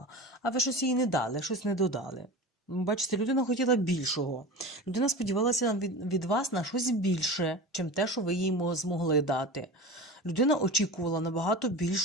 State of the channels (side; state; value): both; normal; correlation 0.31